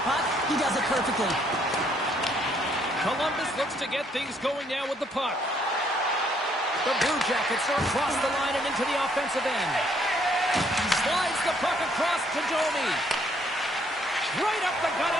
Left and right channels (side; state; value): both; normal; correlation 0.67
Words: puck. He does it perfectly. Columbus looks to get things going now with the puck. The Blue Jackets are across the line and into the offensive end. Slides the puck across to Domi. Right up the gut